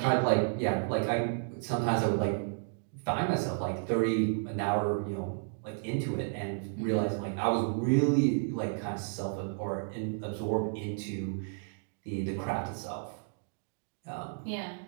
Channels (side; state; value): left; silent; digital silence